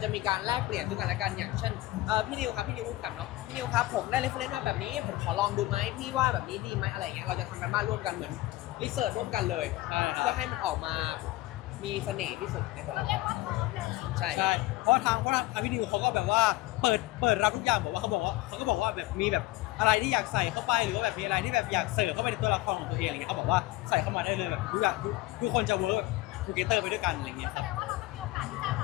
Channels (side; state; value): right; quieter; 18.3 dB